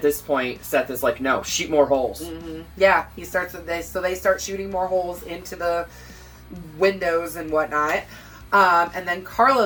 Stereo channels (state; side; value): identical; both; correlation 1.00